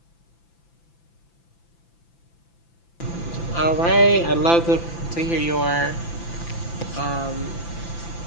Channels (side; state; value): right; late; 5.9 ms